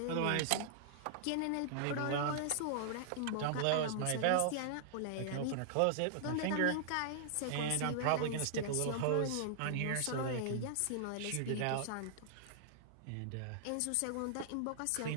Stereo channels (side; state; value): both; different; correlation -0.01